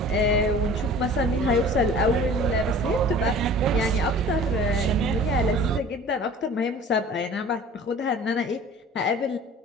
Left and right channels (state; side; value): normal; both; correlation 0.44